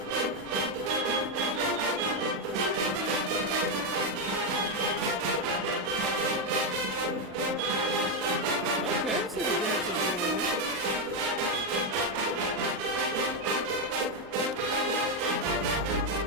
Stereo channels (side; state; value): both; normal; correlation 0.05